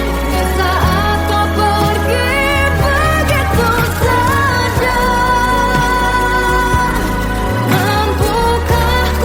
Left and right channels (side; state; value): both; identical; correlation 1.00